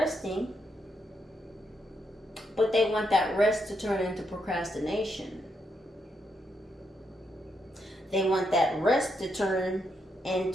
But they want that rest to turn into procrastination. They want that rest to turn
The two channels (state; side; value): normal; both; correlation 0.80